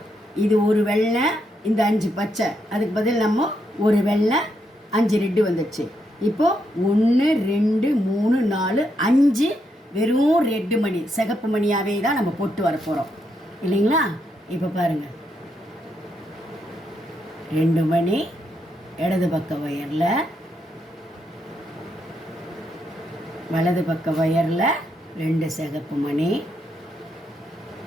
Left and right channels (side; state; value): both; normal; correlation 0.79